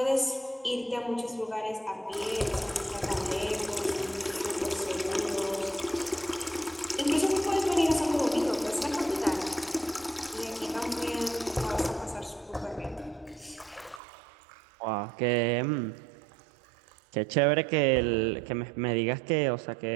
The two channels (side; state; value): left; drops out; at 14.0 s